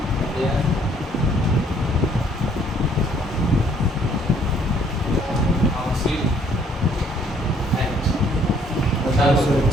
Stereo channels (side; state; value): both; normal; correlation 0.62